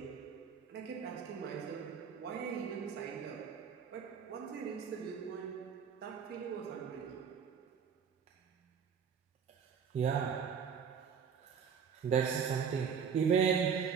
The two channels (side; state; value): left; quieter; 7.0 dB